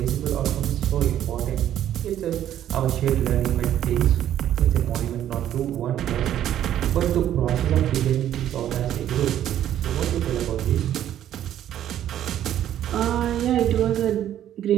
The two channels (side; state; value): left; quieter; 11.3 dB